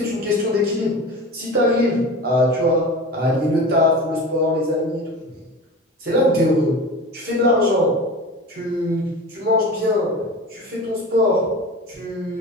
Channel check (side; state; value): both; normal; correlation 0.32